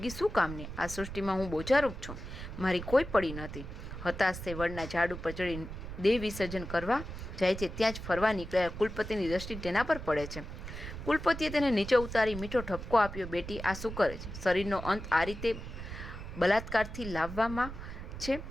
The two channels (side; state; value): right; noise; rumble, 9 dB below the sound